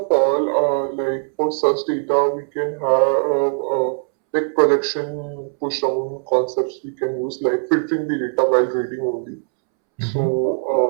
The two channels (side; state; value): left; silent; 66 dB below the other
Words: all, like for such data, we can have like projection push down concepts we can use, like filtering the data while reading only.